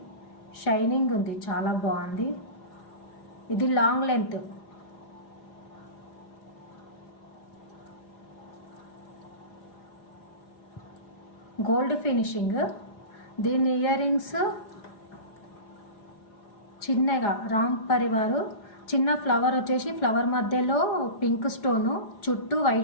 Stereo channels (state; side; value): late; right; 4.9 ms